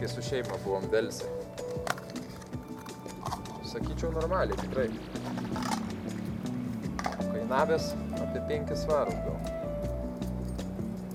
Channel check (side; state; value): both; identical; correlation 1.00